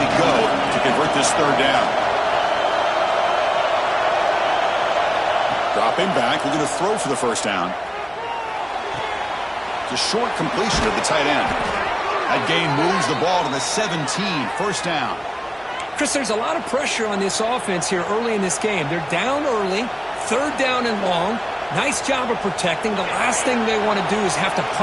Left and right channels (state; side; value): identical; both; correlation 1.00